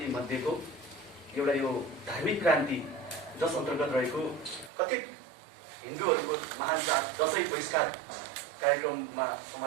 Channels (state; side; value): drops out; left; at 4.7 s